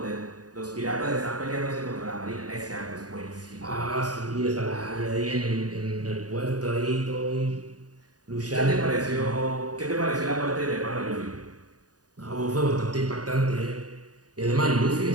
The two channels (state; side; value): late; left; 0.68 ms